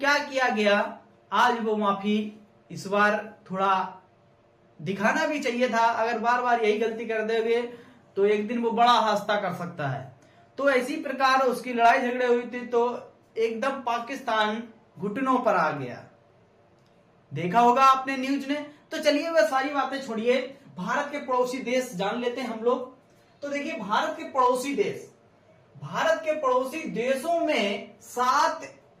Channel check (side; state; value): both; identical; correlation 1.00